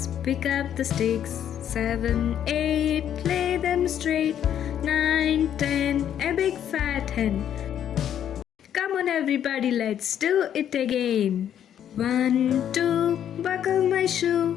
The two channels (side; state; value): right; quieter; 9.9 dB